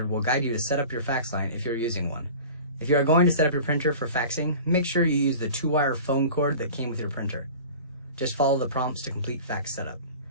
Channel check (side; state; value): both; inverted; correlation -0.39